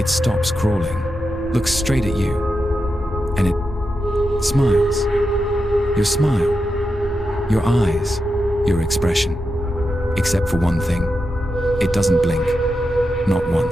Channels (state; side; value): normal; both; correlation 0.88